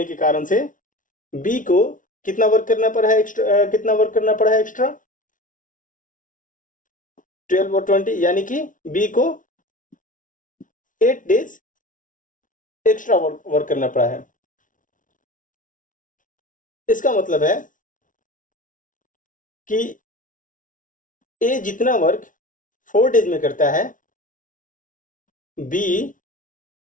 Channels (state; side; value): late; right; 0.38 ms